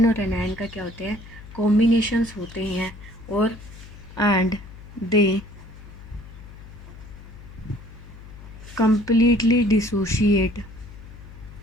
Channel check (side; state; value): left; noise; hum, 17 dB below the sound